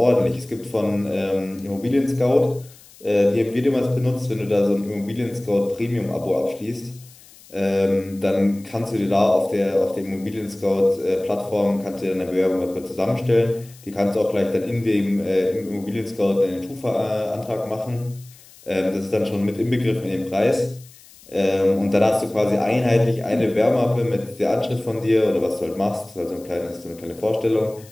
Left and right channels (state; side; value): noise; left; hiss, 24 dB below the sound